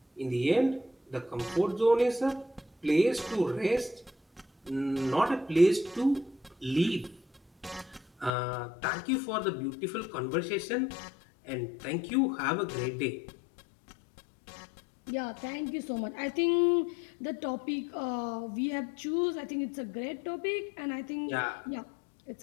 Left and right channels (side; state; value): right; drops out; at 8.3 s